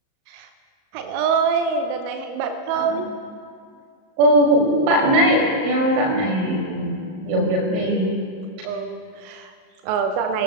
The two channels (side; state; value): left; late; 38 ms